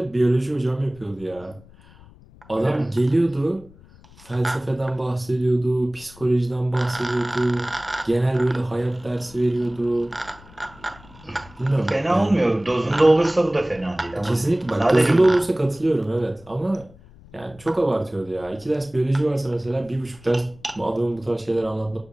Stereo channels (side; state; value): left; noise; rumble, 24 dB below the sound